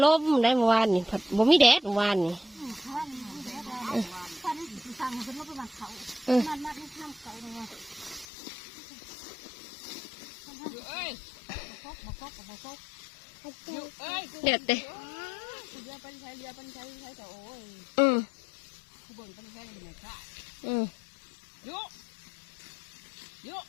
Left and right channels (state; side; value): drops out; right; at 8.2 s